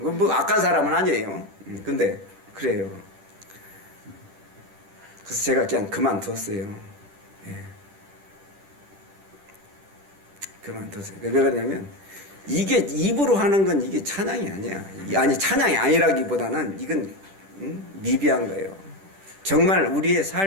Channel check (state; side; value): late; left; 10 ms